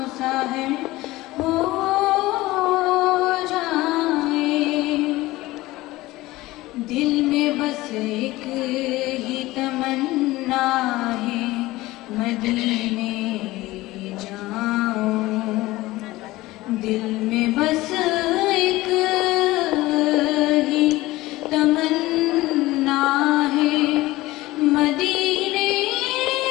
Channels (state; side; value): quieter; right; 18.6 dB